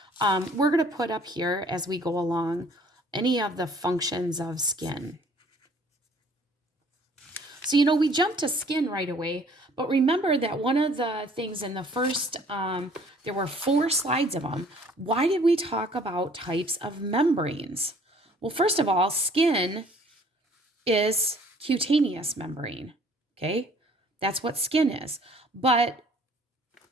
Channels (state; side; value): normal; both; correlation 0.56